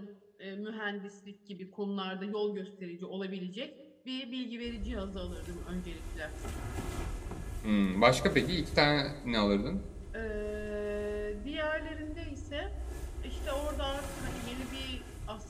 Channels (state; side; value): identical; both; correlation 1.00